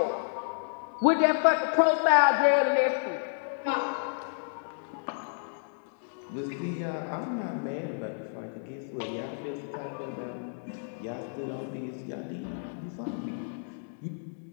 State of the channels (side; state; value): right; silent; digital silence